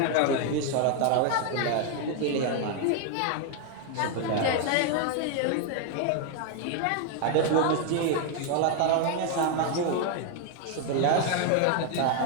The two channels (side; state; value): both; different; correlation 0.01